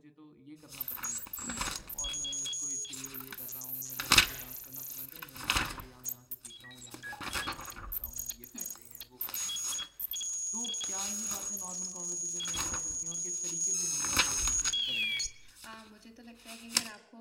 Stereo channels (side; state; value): both; identical; correlation 1.00